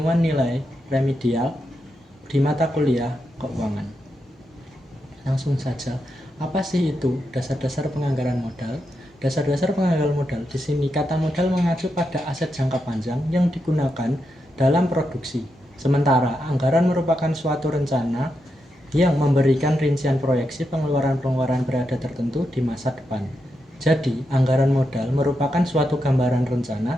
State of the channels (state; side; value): normal; both; correlation 0.85